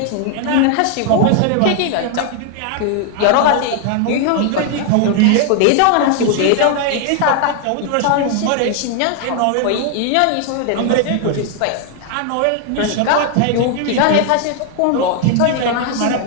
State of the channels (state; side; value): different; both; correlation 0.00